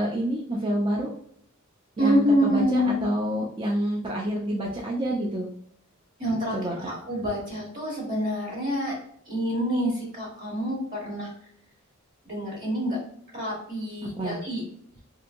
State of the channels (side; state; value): both; normal; correlation 0.65